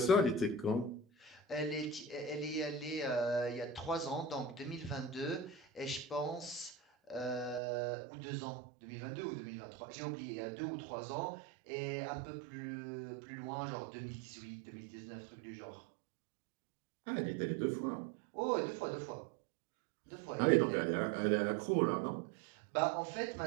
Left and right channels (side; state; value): left; drops out; at 7.6 s